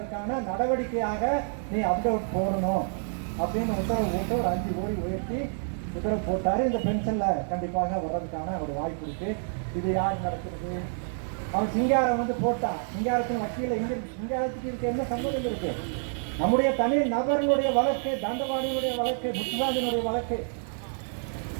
நடவடிக்கையாக நீ அப்டேட் போடணும் அப்படின்னு உத்தரவு போட்டு ஒரு 5 கோடி உயர்த்தி உத்தரவு போட்டாரு. இந்த பென்ஷன்ல கண்டிப்பாக வர்றதுக்கான ஒரு வாய்ப்பு இருக்கு. இது யார் நடக்கிறது? அவன் சிங்காரம் போட்டான். சிங்காரத்தின் வக்கீல இங்க சிங்காரத்துக்கு இருக்க என்ன சம்பந்தம் இருக்கு? நம்முடைய தனி நபர்களுடைய வழக்கு, தண்டவாணியுடைய வழக்கு, முத்துராஜனுடைய வழக்கு,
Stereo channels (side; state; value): left; silent; 59 dB below the other